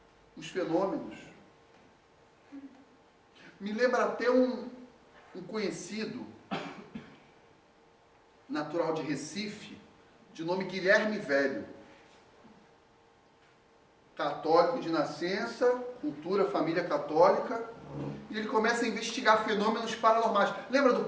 os fenômenos. Me lembra até um conhecido, natural de Recife, de nome Guilherme Velho. Católico de nascença, cultura, família católica, e ele começa a investigar fenômenos paranormais. Lembra do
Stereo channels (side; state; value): both; identical; correlation 1.00